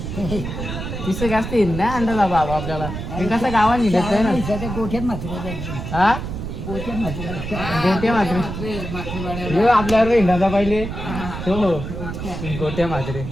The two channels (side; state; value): right; noise; rumble, 7 dB below the sound